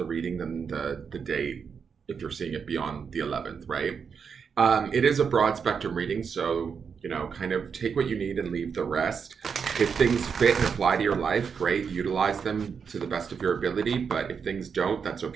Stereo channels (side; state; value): left; quieter; 6.3 dB